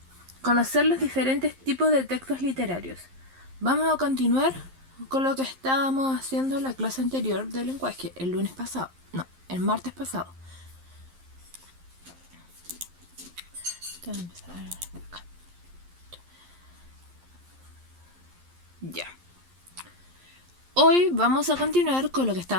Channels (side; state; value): left; late; 11 ms